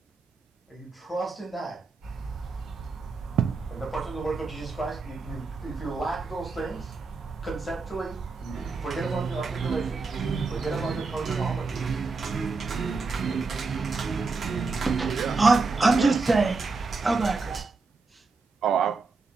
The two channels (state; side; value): quieter; left; 4.1 dB